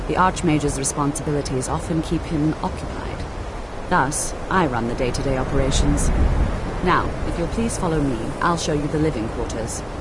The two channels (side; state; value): both; identical; correlation 1.00